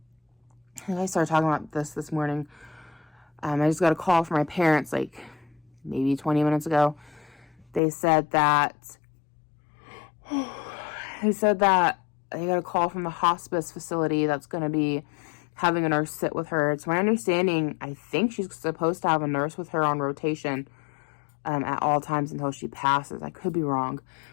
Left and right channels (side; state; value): right; drops out; at 7.8 s